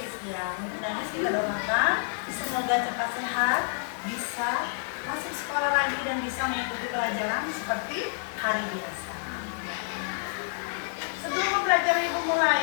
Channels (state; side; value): silent; right; 59 dB below the other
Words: Ya, untuk Danis kita doakan semoga cepat sehat, bisa masuk sekolah lagi dan bisa mengikuti pelajaran seperti hari biasa. Sebelum mempelajari Ibu